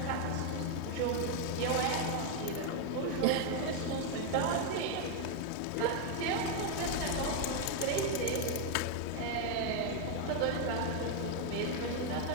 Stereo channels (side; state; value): both; different; correlation 0.01